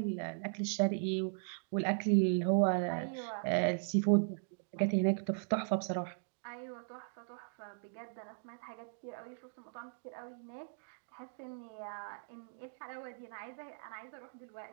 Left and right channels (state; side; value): silent; left; digital silence